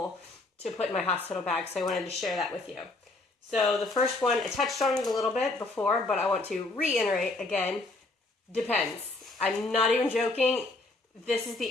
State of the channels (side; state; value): right; quieter; 3.1 dB